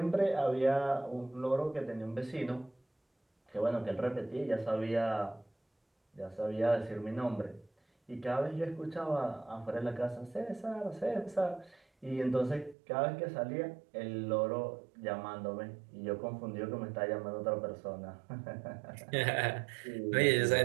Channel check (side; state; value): left; drops out; at 12.8 s